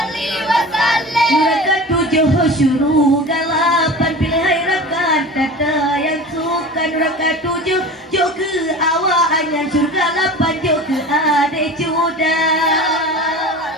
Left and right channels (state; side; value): normal; both; correlation 0.35